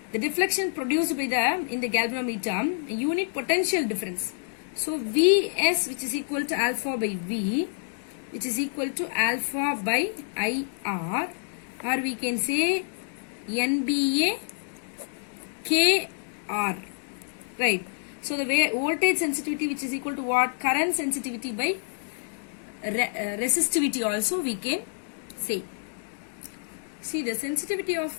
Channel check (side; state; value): right; silent; digital silence